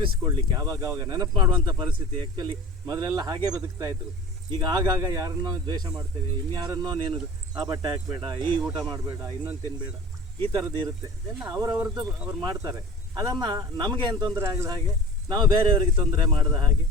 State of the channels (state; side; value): normal; both; correlation 0.39